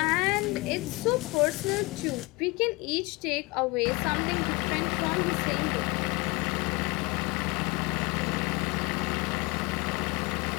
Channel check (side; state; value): right; quieter; 25.5 dB